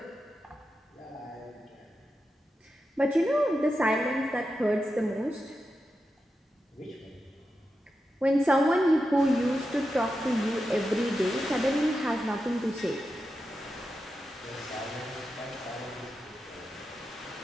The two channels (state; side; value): normal; both; correlation 0.89